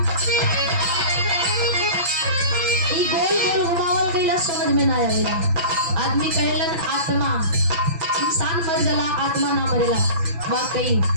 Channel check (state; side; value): late; left; 6.0 ms